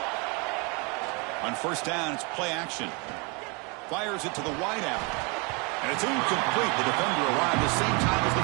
On 1st down, it's play action. Fires it to the wideout. And it's incomplete. The defender arrived the same time as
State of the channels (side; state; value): left; quieter; 31.1 dB